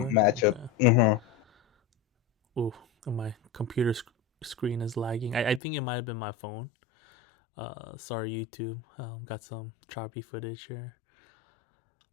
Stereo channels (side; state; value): right; drops out; at 5.6 s